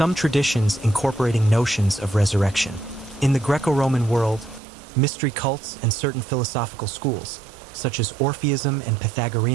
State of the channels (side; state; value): left; drops out; at 4.6 s